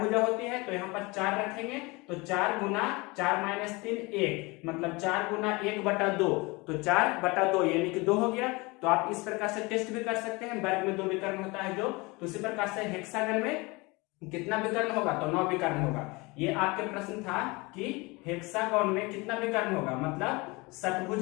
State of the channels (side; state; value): right; quieter; 25.1 dB